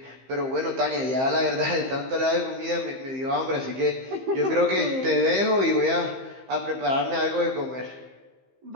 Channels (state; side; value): late; left; 15 ms